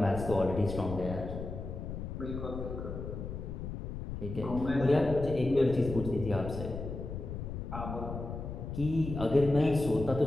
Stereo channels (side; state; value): left; noise; rumble, 7 dB below the sound